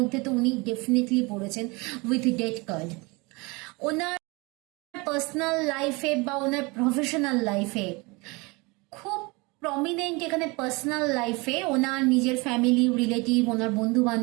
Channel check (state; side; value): quieter; left; 26.2 dB